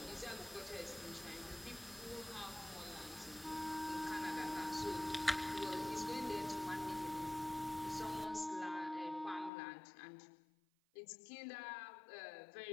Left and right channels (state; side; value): drops out; right; at 9.5 s